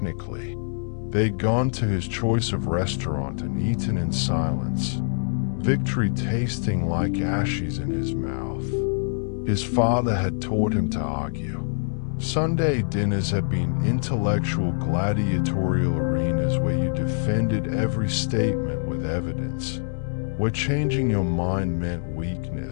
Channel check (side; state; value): right; silent; digital silence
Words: They'd gone to his choice of restaurant and eaten in silence, victory tasting like ashes in his mouth. His father had taught him to argue. Sunday dinners had been intellectual gladiatorial arenas where you defended every statement with evidence, where changing your mind meant